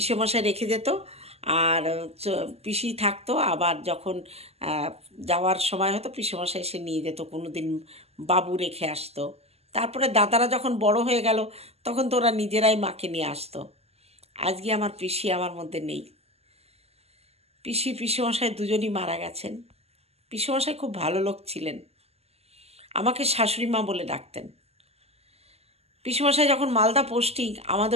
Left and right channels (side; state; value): left; late; 0.30 ms